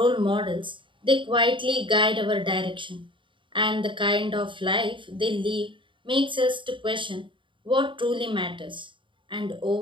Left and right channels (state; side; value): late; left; 0.24 ms